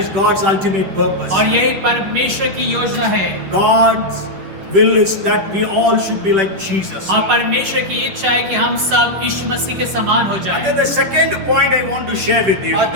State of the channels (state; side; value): late; left; 10 ms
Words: is God's ultimate purpose. और यही परमेश्वर की योजना है। God's will is that we all should be like Jesus. और परमेश्वर की इच्छा है कि हम सब यीशु मसीह के समान हो And जाएं। then the second point I want to share with you. और